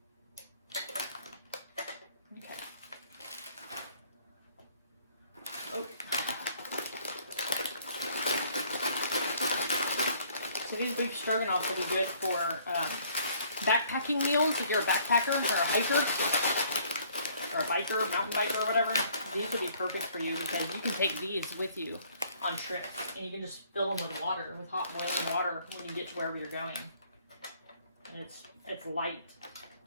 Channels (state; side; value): inverted; both; correlation -0.61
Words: These beef stroganoffs will be good for backpacking meals if you're a backpacker or a hiker or a biker, mountain biker or whatever. These will be perfect for you because you can take these with you on trips and you can just fill them with water, with hot boiling water when you get to wherever you're going. And it's light.